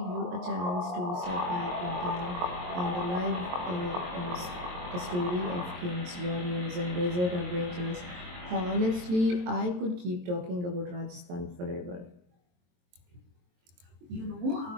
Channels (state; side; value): late; left; 22 ms